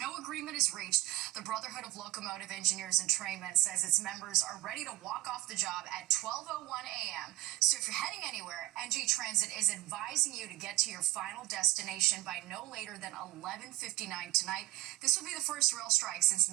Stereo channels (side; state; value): left; quieter; 17.5 dB